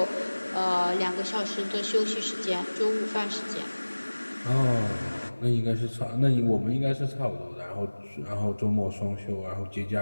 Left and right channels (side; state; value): both; inverted; correlation -1.00